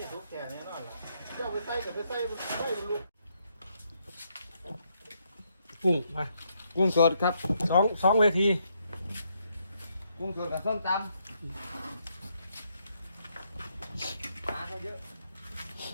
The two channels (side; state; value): both; inverted; correlation -0.76